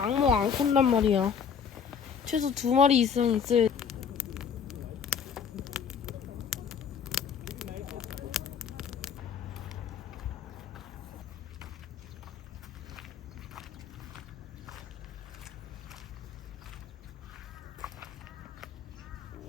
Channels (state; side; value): quieter; right; 7.0 dB